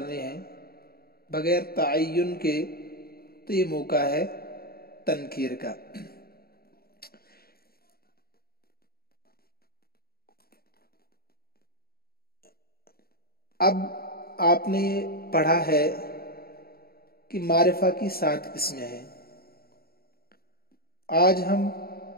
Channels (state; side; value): late; right; 0.44 ms